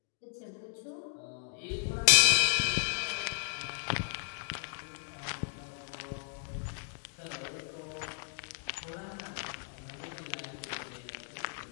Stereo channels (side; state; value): right; silent; 55 dB below the other